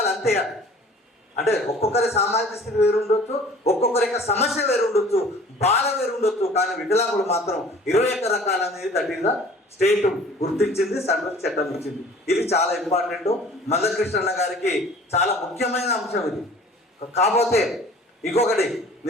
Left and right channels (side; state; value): both; normal; correlation 0.48